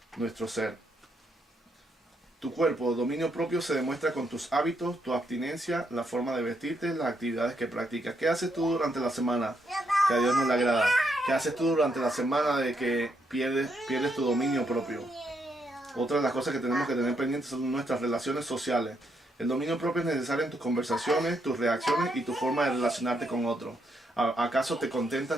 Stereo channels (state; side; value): normal; both; correlation 0.77